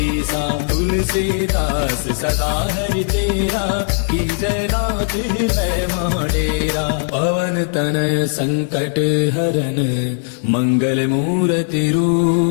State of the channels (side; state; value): right; silent; digital silence